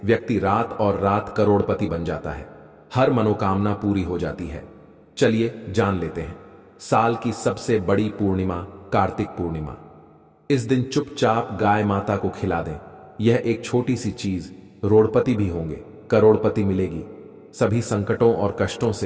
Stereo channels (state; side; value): identical; both; correlation 1.00